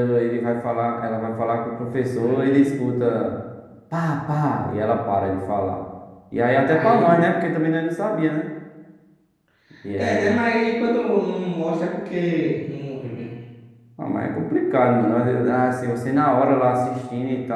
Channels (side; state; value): both; identical; correlation 1.00